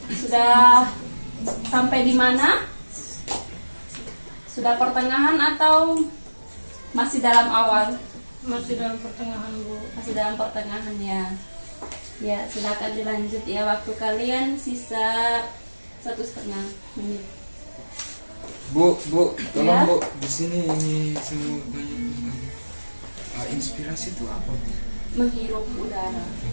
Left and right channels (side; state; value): both; inverted; correlation -1.00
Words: Sudah sampai di mana? Sudah pertengahan atau masih dalam awal? Masih dalam pertengahan Bu. Masih dalam pertengahan ya. Ya, silakan dilanjut ya. Waktu kalian sisa 1,5 menit. Bu, tolong Ya. Bu, di sini ini saya mau tanya tentang inspirasi itu apa Bu? Menghirup udara.